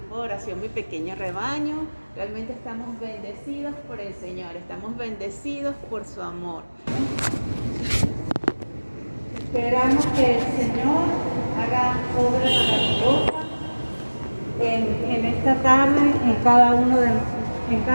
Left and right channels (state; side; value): inverted; both; correlation -1.00